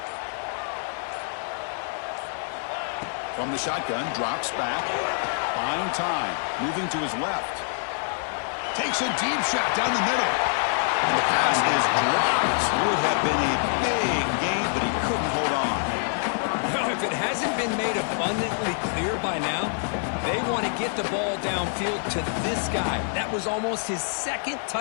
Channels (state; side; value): silent; right; digital silence